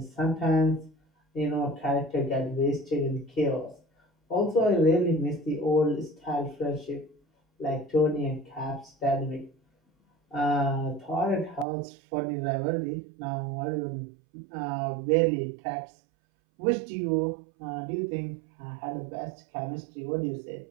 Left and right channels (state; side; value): drops out; left; at 11.7 s